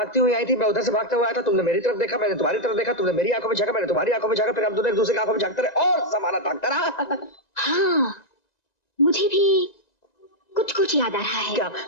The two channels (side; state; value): right; late; 1.9 ms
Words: हुई आई थी, मैं उधर से भागता हुआ आया था। तुमने मेरी तरफ देखा, मैंने तुम्हारी तरफ देखा, तुमने मेरी आंखों में झांका, मैंने तुम्हारी आंखों में झांका, फिर हम दोनों एक दूसरे की आंखों में झांकते रहे और समाना ताकता रहा। हाँ, मुझे भी कुछ कुछ याद आ रहा है। क्या?